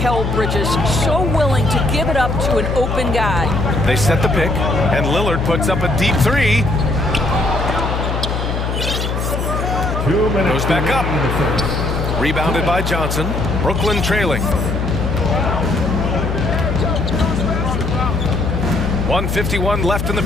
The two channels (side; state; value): left; noise; hum, 2 dB below the sound